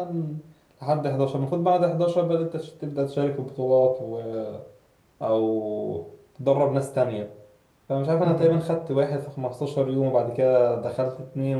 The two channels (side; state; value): both; identical; correlation 1.00